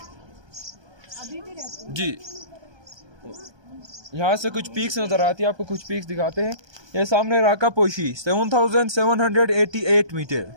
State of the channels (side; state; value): left; late; 1.2 ms